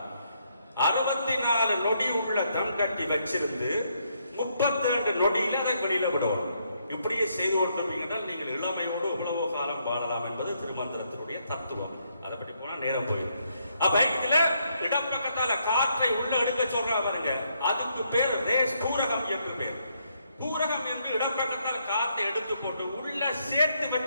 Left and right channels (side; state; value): both; inverted; correlation -0.74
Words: 64 நொடி உள்ள தம் கட்டி வச்சிருந்து 32 நொடியில அதை வெளியில விடணும். இப்படியே செய்து கொண்டிருப்பீங்கன்றால் நீங்கள் இளமையோடு எவ்வளவோ காலம் வாழலாம் என்பது திருமந்திரத்தினுடைய தத்துவம். அதை பற்றி போனா நேரம் போயிடும். அப்ப இதுல இடப்பக்கத்தால காற்றை உள்ள எடுக்க சொல்ற பாருங்க, அதுக்கு பேர் ரேஸ் பூரகம் என்று பேர். பூரகம் என்று இடப்பக்கத்தால் காற்றை எடுத்து போட்டு உள்ள சேர்த்து